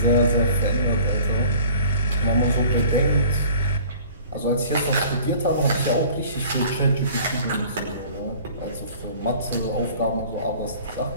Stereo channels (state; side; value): inverted; both; correlation -0.47